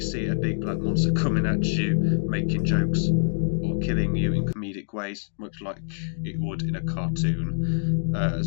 see a big black monster coming at you, making jokes, or killing you in comedic ways, much like it would in a cartoon,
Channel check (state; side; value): silent; right; digital silence